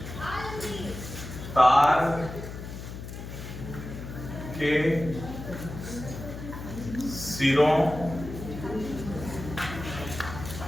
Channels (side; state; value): left; noise; hum, 9 dB below the sound